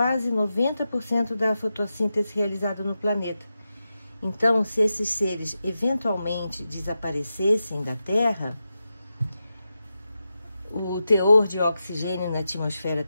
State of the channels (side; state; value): both; inverted; correlation -0.90